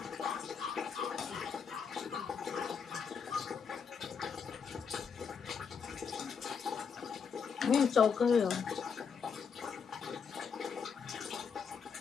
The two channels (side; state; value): right; quieter; 6.3 dB